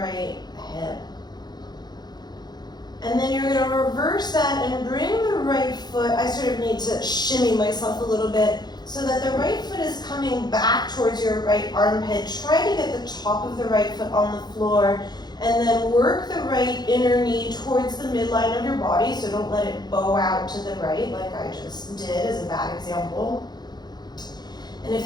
hip. And then you're going to reverse that and bring the right foot. I sort of need to shimmy myself a little bit so that the right foot is coming back towards your right armpit. Try to get the top of the right foot on the floor. And then work the right inner knee towards the midline of your body, so don't let it bow out to the right like I just did as a bad example. And if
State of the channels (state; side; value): late; right; 0.20 ms